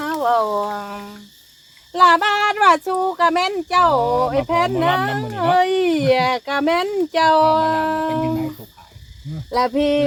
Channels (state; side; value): identical; both; correlation 1.00